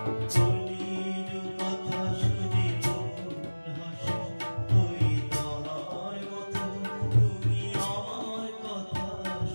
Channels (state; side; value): inverted; both; correlation -1.00